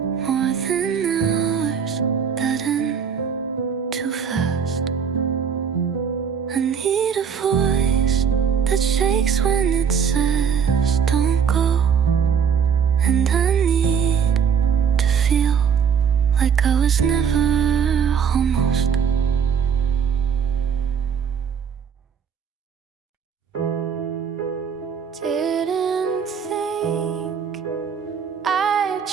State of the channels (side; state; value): left; quieter; 7.0 dB